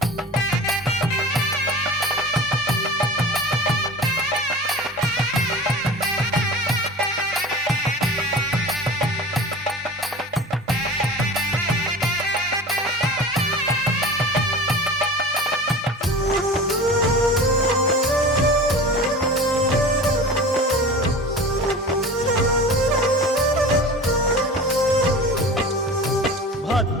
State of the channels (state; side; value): normal; both; correlation 0.36